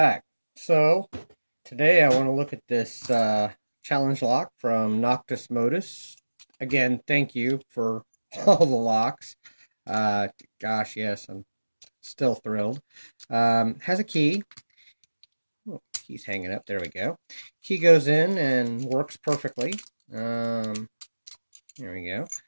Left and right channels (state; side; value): inverted; both; correlation -1.00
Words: So today I want to look at this challenge lock from Noctis Motus. Again, thank you for all the locks. Gosh, yes, I'm still thrilled. Has a key. Oh, key's hanging up. There we go. Key goes in and works perfectly. There we go.